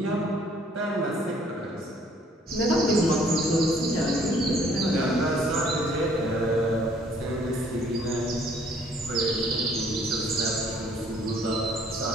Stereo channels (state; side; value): normal; both; correlation 0.61